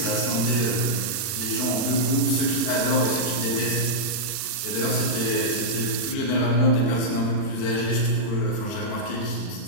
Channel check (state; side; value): late; right; 39 ms